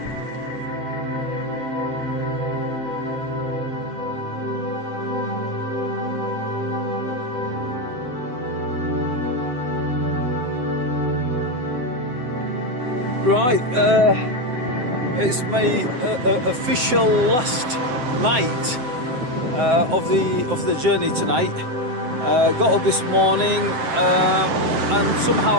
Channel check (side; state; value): left; late; 7.8 ms